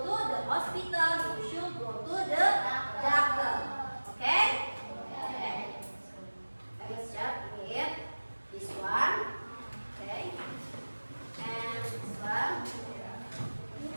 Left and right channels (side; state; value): both; inverted; correlation -1.00